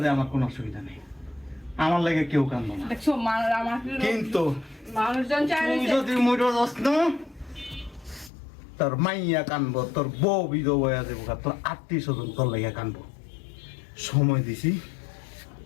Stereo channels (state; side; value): drops out; right; at 8.3 s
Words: যাই আমার কোনো অসুবিধা নেই, আমার লাগে কেউ কান্দো না, দেখছো আমার কিন্তু মানুষজন চায় তুই যদি মইরা যাস না, তোর মাইয়া কানবো, তোর বউ বিধবা হয়ে যাবো, তোর আত্মীয় স্বজন তোর লাগে কানবো। সময় দিছি